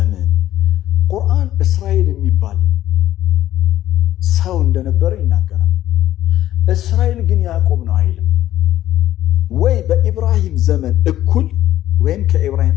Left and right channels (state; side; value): quieter; right; 13.2 dB